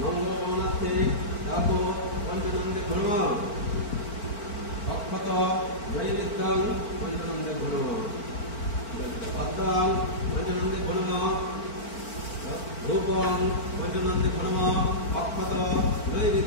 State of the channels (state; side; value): late; right; 4.4 ms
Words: মঙ্গল কামনার্থে ডাউক পঞ্চনন্দে ধর্ম অক্ষত নৈবেদ্যং পঞ্চনন্দে ধর্ম পদ্মাং পঞ্চনন্দে ধর্ম রূপং পঞ্চনন্দে ধর্ম অক্ষত